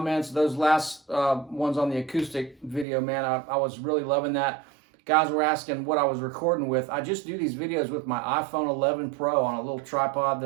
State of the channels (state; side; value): drops out; left; at 2.9 s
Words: Those last ones on the acoustic video, man, I was really loving that. Guys were asking what I was recording with. I just do these videos with my iPhone 11 Pro on a little tripod